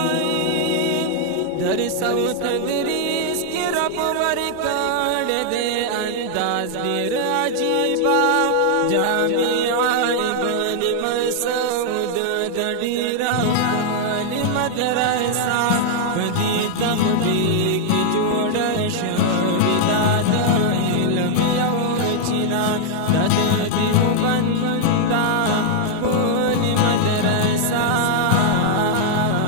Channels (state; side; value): different; both; correlation -0.01